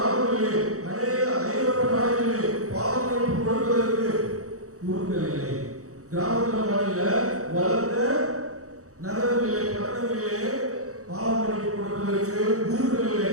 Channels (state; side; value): late; left; 0.65 ms